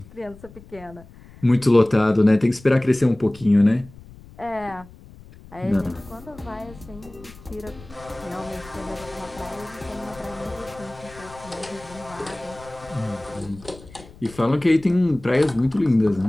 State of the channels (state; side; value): noise; left; rumble, 20 dB below the sound